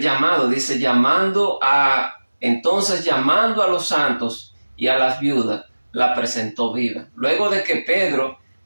llamado, dice, llamando a los santos y a las viudas, la presentó viva. Luego de que Pedro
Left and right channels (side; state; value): both; inverted; correlation -1.00